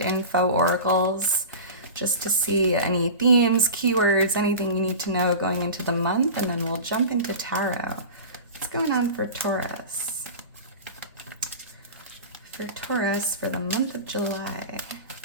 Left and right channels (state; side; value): inverted; both; correlation -0.31